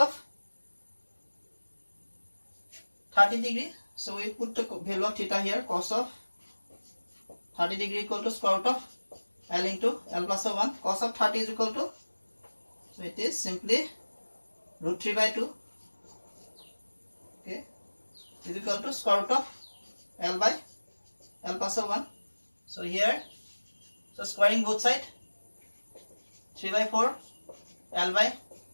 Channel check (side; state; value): both; inverted; correlation -1.00